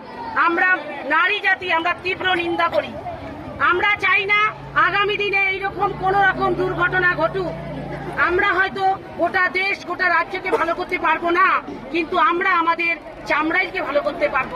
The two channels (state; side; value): identical; both; correlation 1.00